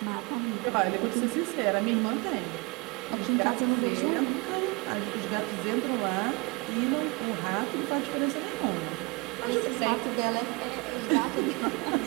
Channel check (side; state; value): left; quieter; 27.7 dB